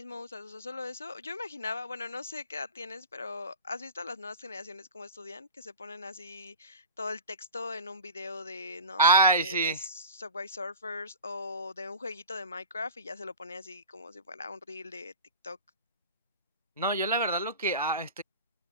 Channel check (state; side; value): inverted; both; correlation -0.35